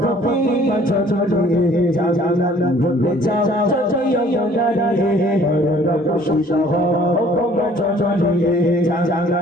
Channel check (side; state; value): both; normal; correlation 0.55